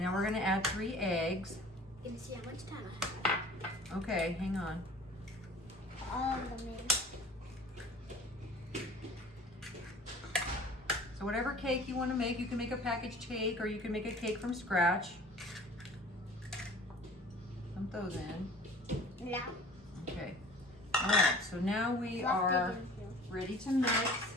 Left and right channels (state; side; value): normal; both; correlation 0.45